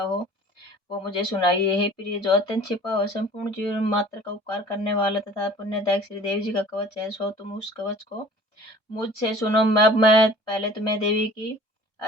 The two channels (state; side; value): normal; both; correlation 0.47